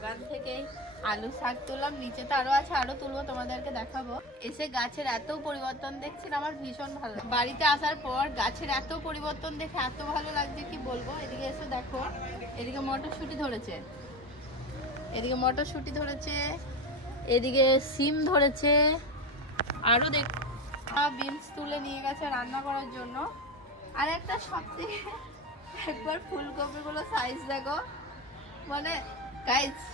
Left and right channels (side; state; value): both; normal; correlation 0.24